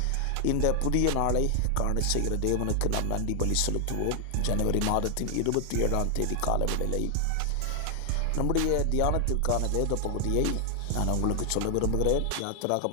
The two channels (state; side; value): different; both; correlation 0.00